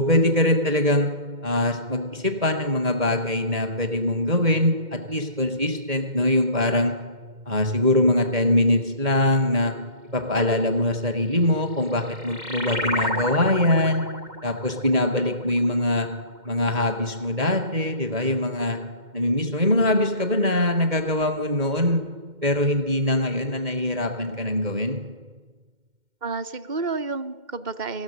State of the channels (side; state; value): left; late; 2.1 ms